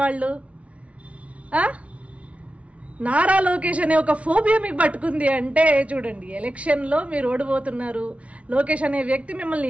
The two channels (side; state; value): left; late; 0.064 ms